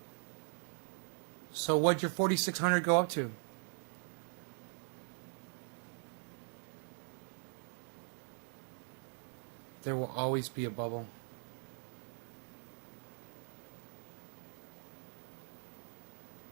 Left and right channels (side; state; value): left; silent; 50 dB below the other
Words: So what'd your 4,600 go up to? There will always be a bubble.